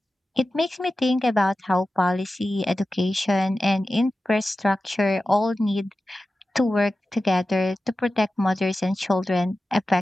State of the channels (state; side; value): normal; both; correlation 0.94